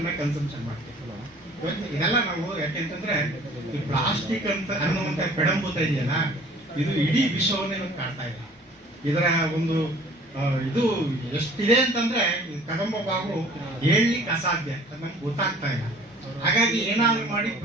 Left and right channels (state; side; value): normal; both; correlation 0.51